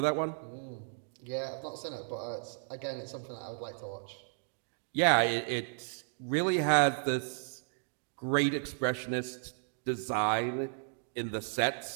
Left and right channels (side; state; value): left; silent; digital silence